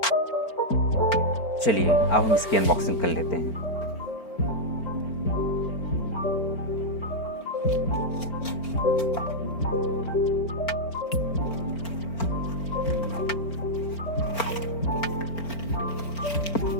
चलिए अब हम इसकी अनबॉक्सिंग कर लेते हैं।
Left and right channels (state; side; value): late; right; 4.4 ms